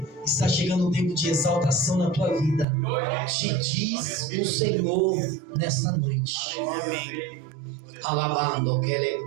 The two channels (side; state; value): left; drops out; at 2.7 s